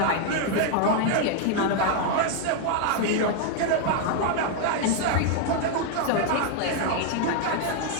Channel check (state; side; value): different; both; correlation 0.00